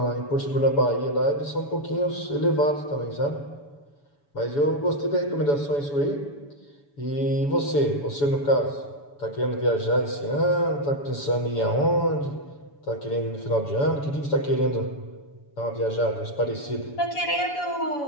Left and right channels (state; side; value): late; right; 7.0 ms